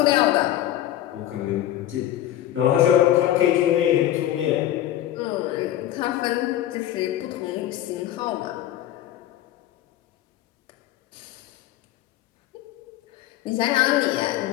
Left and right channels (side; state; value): right; quieter; 12.8 dB